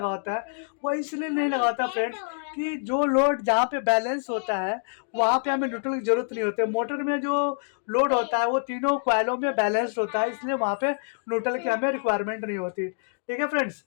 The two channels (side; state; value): right; silent; digital silence